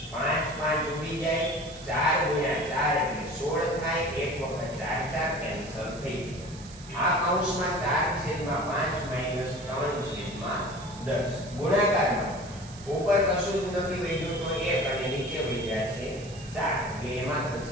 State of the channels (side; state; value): right; noise; hiss, 18 dB below the sound